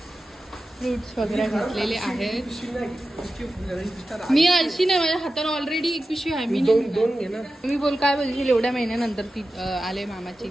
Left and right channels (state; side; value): normal; both; correlation 0.93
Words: फ्रूट्स वगैरे घेतलेले आहेत. मी अशी नाही, माझ्या हाताने ऑलरेडी एक पिशवी आहे. मी दोन घे ना. तुम्ही बोल काय बोलशील? एवढ्या महिन्यानंतर ती आले मामाची.